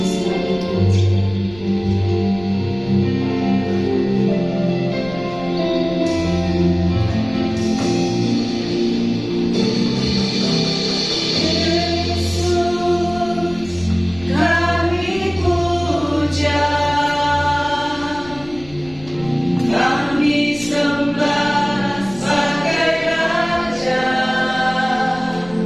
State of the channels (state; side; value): noise; left; rumble, 19 dB below the sound